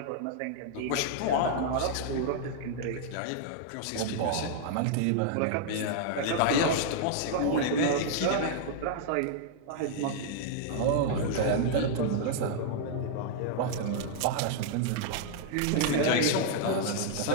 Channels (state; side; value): different; both; correlation -0.01